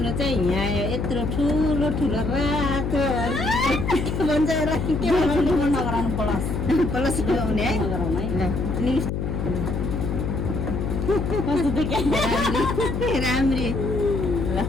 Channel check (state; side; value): noise; left; hum, 2 dB below the sound